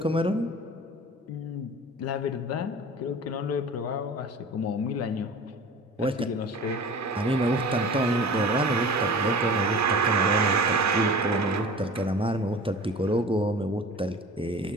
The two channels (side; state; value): both; normal; correlation 0.39